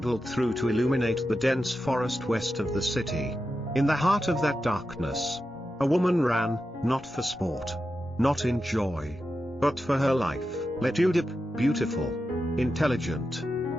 through to illuminate the dense forest west of the city. In the heart of that darkness, a woman ran, not for sport, not in joy, but for her life. Lytudiep, beautiful, intelligent,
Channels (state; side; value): normal; both; correlation 0.90